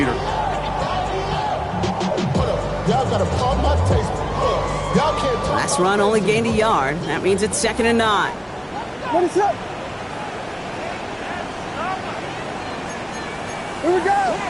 Last run only gained a yard. That means it's 2nd and 9. What is up? Here we go.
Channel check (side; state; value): both; identical; correlation 1.00